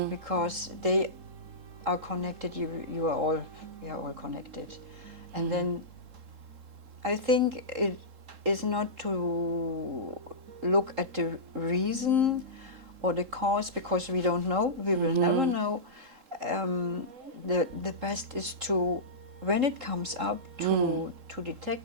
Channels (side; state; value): left; late; 3.8 ms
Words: because they are connected. You are all connected, and then I think it is not to look at the reason or the cause, because we don't know. We will never know. The best is to, when it comes up, to